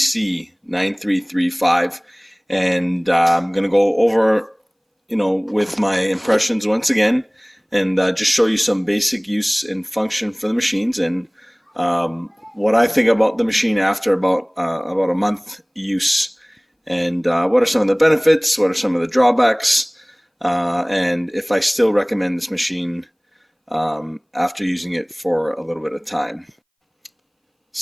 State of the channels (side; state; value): both; identical; correlation 1.00